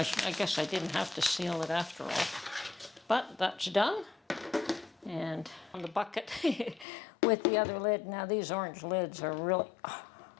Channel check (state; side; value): drops out; right; at 6.9 s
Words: guess I didn't have to seal it after all. But that's done. And on the bucket with the other lid. Now these orange lids are really